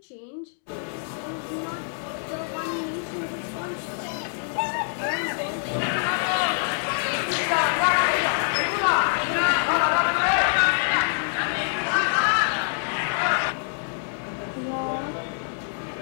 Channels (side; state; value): right; silent; 61 dB below the other